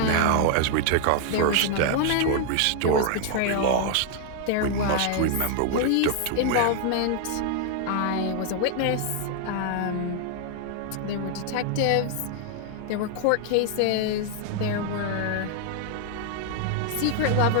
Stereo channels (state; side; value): different; both; correlation 0.00